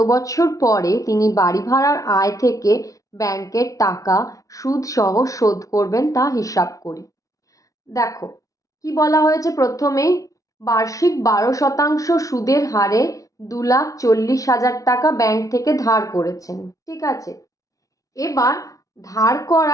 বছর পরে তিনি বাড়ি ভাড়ার আয় থেকে ব্যাংকের টাকা সুদ সহ শোধ করবেন তা হিসাব করি। দেখো কি বলা হয়েছে, প্রথমেই বার্ষিক 12% সুদের হারে 2,40,000 টাকা ব্যাংক থেকে ধার করেছেন, ঠিক আছে। এবার ধার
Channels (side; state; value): right; late; 0.17 ms